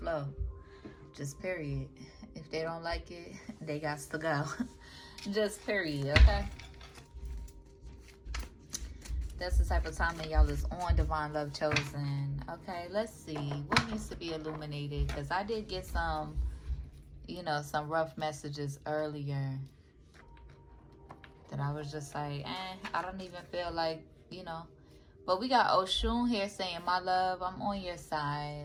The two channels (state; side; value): identical; both; correlation 1.00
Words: Just period. If they don't like it, they got to go. Just period, okay? That's the type of time that y'all is on, Divine Love Chosen. Okay, let's see. What needs to be illuminated? Because I did get some, some rough messages earlier that I was just like, I don't even feel like, But we got Oshun here saying, my love, I'm on your